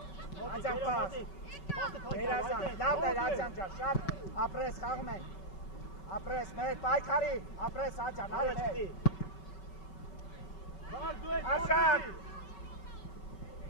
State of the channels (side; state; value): right; late; 5.3 ms